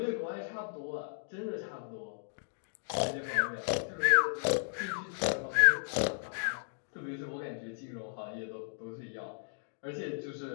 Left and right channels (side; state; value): right; silent; digital silence